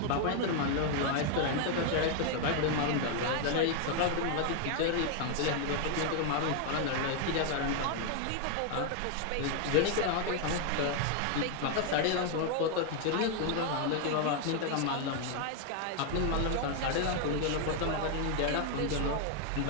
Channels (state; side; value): different; both; correlation 0.00